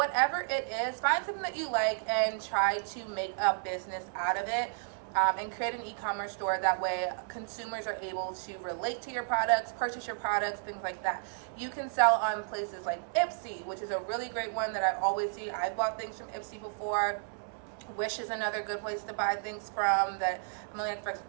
it is. Find something that you like and try to make a business out of it. And create an e-commerce store. That way consumers are able to relate to your products, purchase your products, things like that. You can sell on places like Ipsy, which is a really great one that I always see. I've bought things from Ipsy before. Wish is another good place to buy things from that. I've only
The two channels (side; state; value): left; silent; digital silence